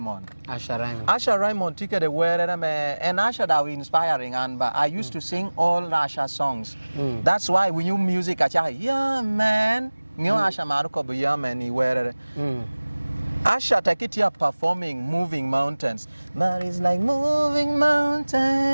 Asha Raymond took the word and Asha that was inspiring and I used to sing all Asha songs. That's why we knew music Asha, yeah man, new Asha Maruko yeah man he wear. Asha take it here performing Moving Mountains. But it's like moving mountains.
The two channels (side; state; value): both; inverted; correlation -1.00